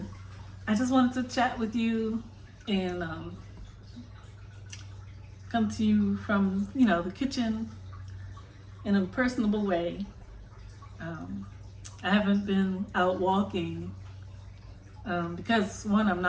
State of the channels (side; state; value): both; identical; correlation 1.00